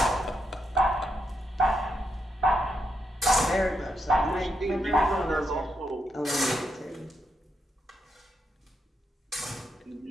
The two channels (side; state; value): both; normal; correlation 0.81